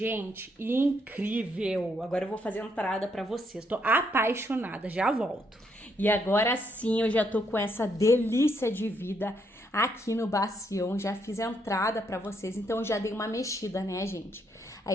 Incrível. Agora eu vou fazer a entrada pra vocês. Tô apaixonada, já volto. E agora sim, eu já tô com essa delícia de vida aqui no bacião. Já fiz a entrada pra vocês, então eu já dei uma mexida, né, gente?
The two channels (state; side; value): normal; both; correlation 0.74